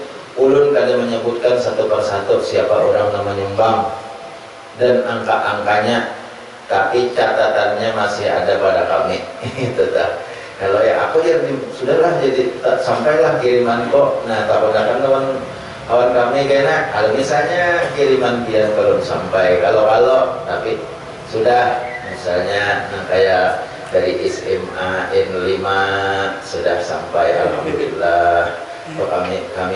Ulun kadang menyebutkan satu persatu siapa orang yang menyumbang dan angka-angkanya, tapi catatannya masih ada pada kami. Itu tak. Kalau ya aku ya sudahlah, jadi sampailah kiriman kok. Nah takutkan kawan kami kena kalau misalnya kiriman pian belum sampai, kalau tapi sudah misalnya kayak dari SMA N5 sudah sampai alhamdulillah.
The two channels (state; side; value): identical; both; correlation 1.00